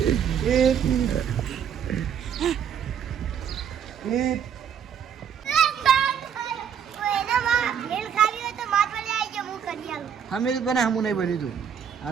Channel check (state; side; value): quieter; left; 8.2 dB